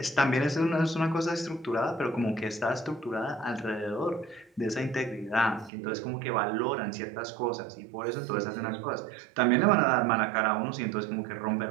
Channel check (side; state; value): left; drops out; at 5.7 s